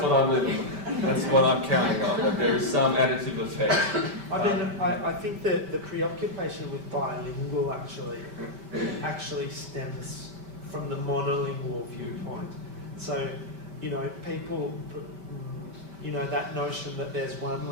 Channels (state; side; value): late; left; 5.1 ms